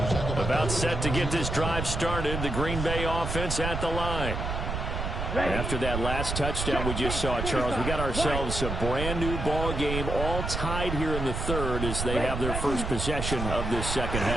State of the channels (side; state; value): right; noise; rumble, 3 dB below the sound